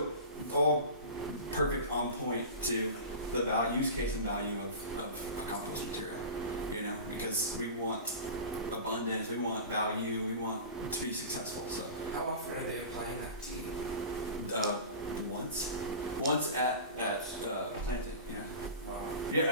all perfect on point to the use case and value of a compost material, you know, because we want abundance, we want value, we want to be successful. So How often are they applying that tea? once at planting, yeah. Wow.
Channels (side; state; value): both; inverted; correlation -0.33